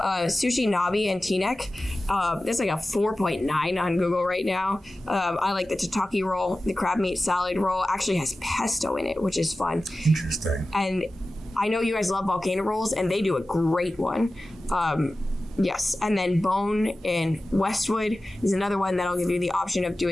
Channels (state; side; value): normal; both; correlation 0.95